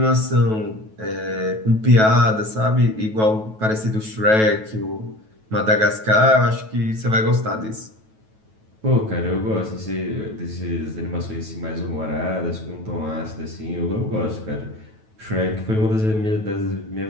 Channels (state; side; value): late; left; 9.2 ms